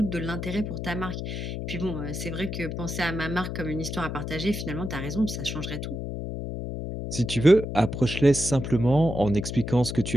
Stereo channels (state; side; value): noise; left; hum, 5 dB below the sound